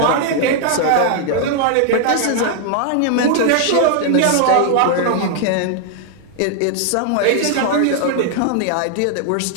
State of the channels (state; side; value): different; both; correlation 0.00